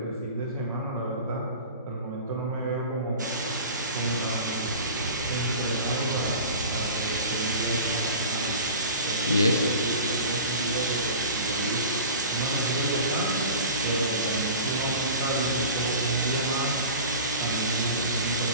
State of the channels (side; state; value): both; inverted; correlation -0.38